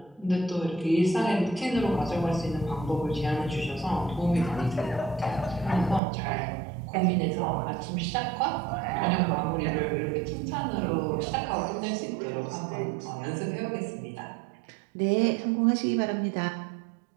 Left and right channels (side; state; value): left; drops out; at 6.0 s